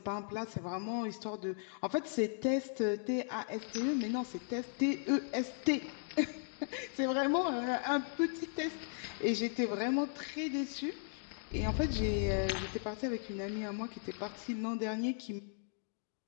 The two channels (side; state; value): right; silent; digital silence